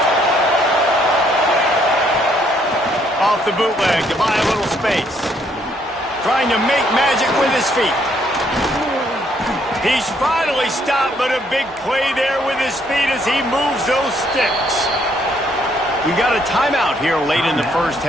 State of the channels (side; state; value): both; normal; correlation 0.69